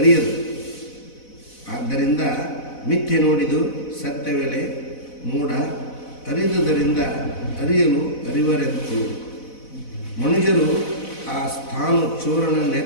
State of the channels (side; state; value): right; late; 4.0 ms